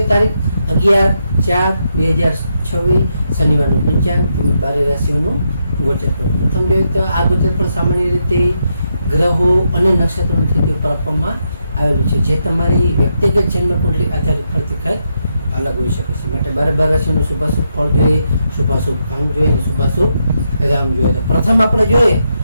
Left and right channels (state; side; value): inverted; both; correlation -0.81